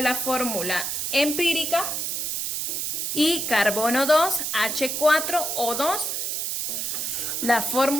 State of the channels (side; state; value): right; noise; hiss, 2 dB below the sound